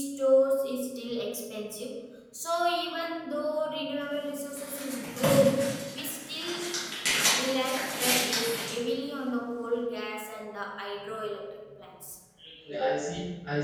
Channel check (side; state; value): both; identical; correlation 1.00